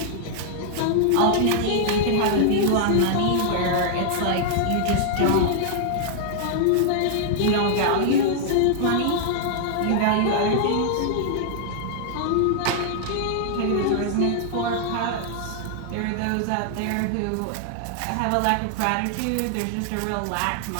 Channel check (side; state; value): both; different; correlation -0.01